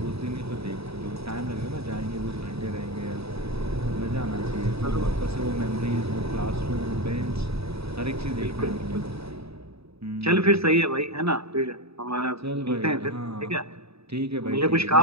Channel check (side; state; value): left; late; 0.78 ms